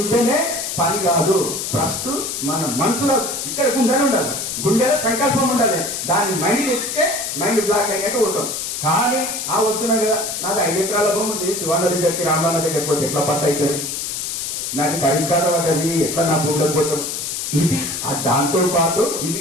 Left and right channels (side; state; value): left; noise; hiss, 4 dB below the sound